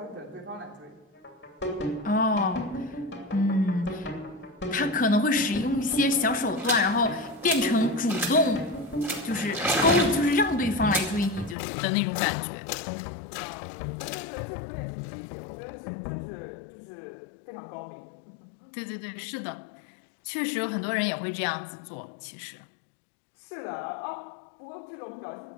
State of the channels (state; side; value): drops out; right; at 11.6 s